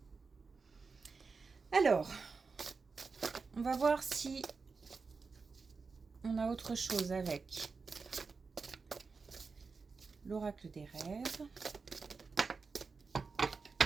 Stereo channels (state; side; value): quieter; left; 4.6 dB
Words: Alors, on va voir si on a autre chose avec l'oracle des rêves.